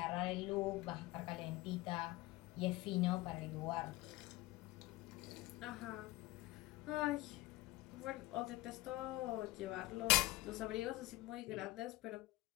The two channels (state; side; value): quieter; right; 19.4 dB